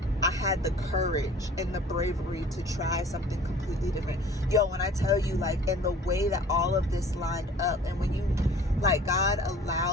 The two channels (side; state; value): both; normal; correlation 0.48